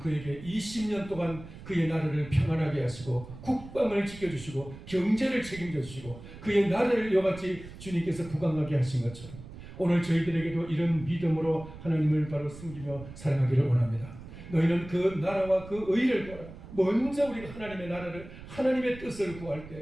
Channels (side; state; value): right; noise; rumble, 15 dB below the sound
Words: 20년 동안 그의 나라를 평안하게 하시고 국방을 지켜주시고 경제를 책임져 주시고 그의 나라를 이와같이 주님께서 부강하게 하신 것처럼 오늘 저희들에게도 이런 믿음으로 하나님을 바로 섬기며 사랑하기를 원합니다. 너희는 그 나라와 그 의를 구하라. 먼저 우리가 하나님의 나라를 하나님의 뜻을 구할